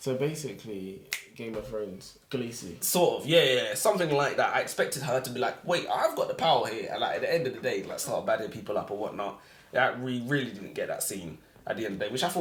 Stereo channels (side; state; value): both; identical; correlation 1.00